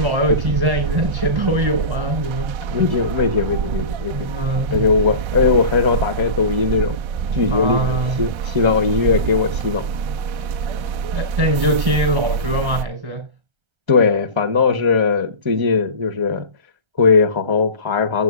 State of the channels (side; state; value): left; late; 1.3 ms